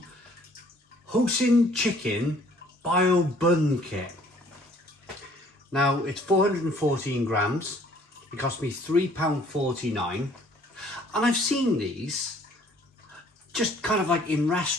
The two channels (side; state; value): both; normal; correlation 0.58